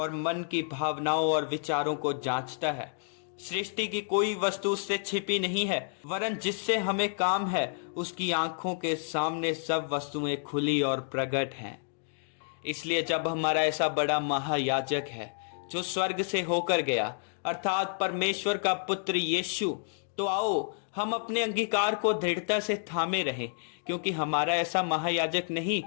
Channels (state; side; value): silent; right; digital silence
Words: मन की भावनाओं और विचारों को जांचता है। सृष्टि की कोई वस्तु उससे छिपी नहीं है, वरन जिससे हमें काम है उसकी आंखों के सामने सब वस्तुएं खुली और प्रकट हैं। इसलिए जब हमारा ऐसा बड़ा महायाजक है जो स्वर्ग से होकर गया, अर्थात परमेश्वर का पुत्र यीशु, तो आओ हम अपने अंगीकार को दृढ़ता से थामे रहें, क्योंकि हमारा ऐसा महायाजक नहीं